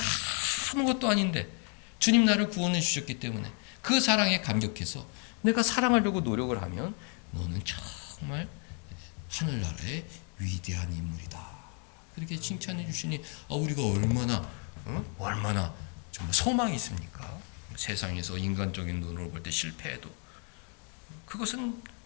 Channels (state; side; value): quieter; right; 39.5 dB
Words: 아무것도 아닌데 주님 나를 구원해 주셨기 때문에 그 사랑에 감격해서 내가 사랑하려고 노력을 하면 너는 정말 하늘나라의 위대한 인물이다. 그렇게 칭찬해 주시니 우리가 얼마나 정말 소망이 있습니까? 세상에서 인간적인 눈으로 볼 때 실패해도 그것은